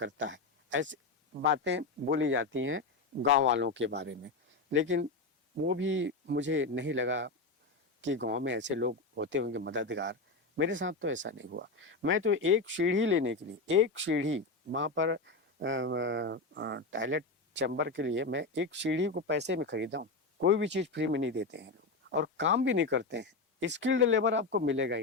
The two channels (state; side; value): quieter; right; 3.6 dB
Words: है। ऐसी बातें बोली जाती हैं गांव वालों के बारे में, लेकिन वो भी मुझे नहीं लगा कि गांव में ऐसे लोग होते होंगे मददगार। मेरे साथ तो ऐसा नहीं हुआ। मैं तो एक सीढ़ी लेने के लिए, एक सीढ़ी वहाँ पर टॉयलेट चैम्बर के लिए, मैं एक सीढ़ी को पैसे में खरीदा हूँ। कोई भी चीज़ फ्री में नहीं देते हैं लोग, और काम भी नहीं करते हैं। स्किल्ड लेबर आपको मिलेगा